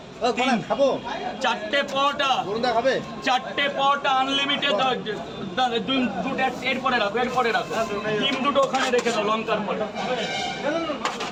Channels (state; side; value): identical; both; correlation 1.00